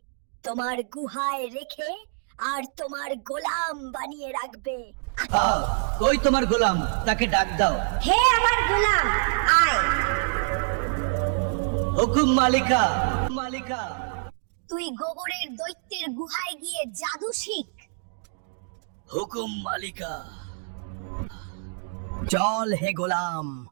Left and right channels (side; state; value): left; silent; 60 dB below the other